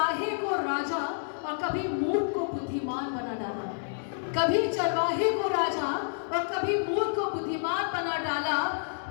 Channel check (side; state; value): right; silent; digital silence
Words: को राजा और कभी मूर्ख को बुद्धिमान बना डाला। कभी चरवाहे को राजा और कभी मूर्ख को बुद्धिमान बना डाला।